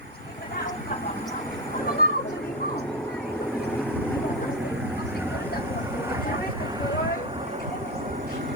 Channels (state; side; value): normal; both; correlation 0.16